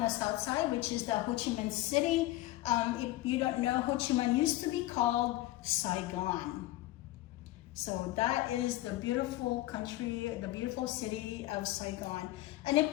south side, which is the Ho Chi Minh City. If you don't know, Ho Chi Minh used to be called Saigon. So that is the beautiful country, the beautiful city of Saigon. And if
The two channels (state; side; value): quieter; right; 16.8 dB